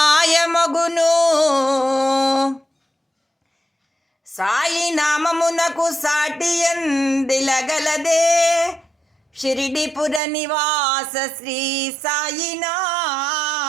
సాయి నామమునకు సాటి ఎందిలగలదే, షిరిడిపుర నివాస శ్రీ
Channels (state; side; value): drops out; left; at 10.2 s